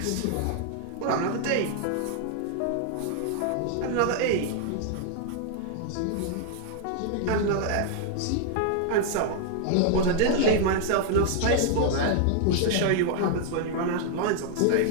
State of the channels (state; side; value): different; both; correlation 0.00